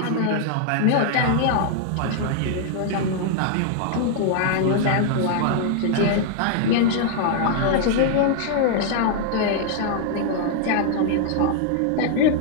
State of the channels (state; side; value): different; both; correlation -0.01